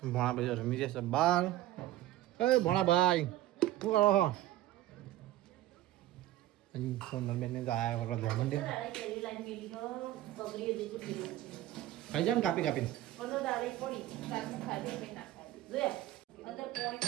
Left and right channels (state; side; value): quieter; left; 14.6 dB